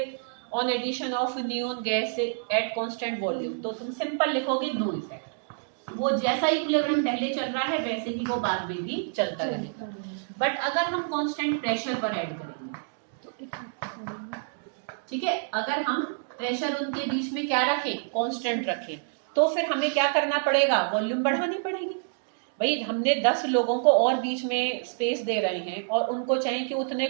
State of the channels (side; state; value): left; silent; digital silence